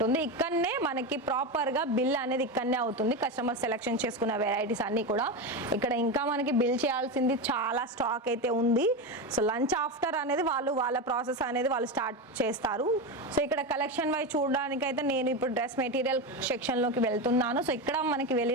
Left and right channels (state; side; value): normal; both; correlation 0.17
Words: ఇక్కడనే మనకి ప్రాపర్ గా బిల్ అనేది ఇక్కడనే అవుతుంది. కస్టమర్ సెలెక్షన్ చేసుకున్న వెరైటీస్ అన్ని కూడా ఇక్కడ. ఇంకా మనకి బిల్ చేయాల్సింది చాలా స్టాక్ అయితే ఉంది. సో లంచ్ ఆఫ్టర్ అనేది వాళ్ళ ప్రాసెస్ అనేది వాళ్ళు స్టార్ట్ చేస్తారు. సో ఇక్కడ కలెక్షన్ వైజ్ చూడడానికి అయితే నేను ఇప్పుడు డ్రెస్ మెటీరియల్ సెక్షన్ లోకి వెళ్తున్నాను. సో ఇక్కడ మనకి